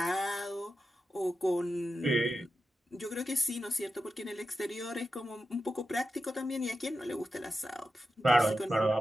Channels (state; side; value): normal; both; correlation 0.90